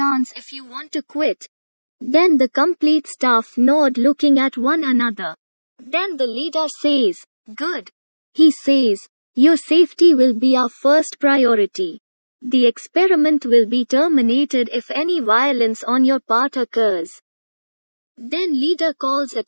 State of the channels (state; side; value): inverted; both; correlation -1.00